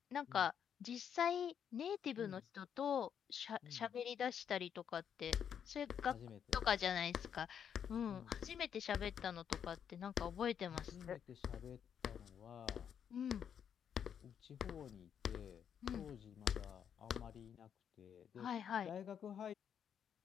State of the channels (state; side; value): quieter; right; 8.3 dB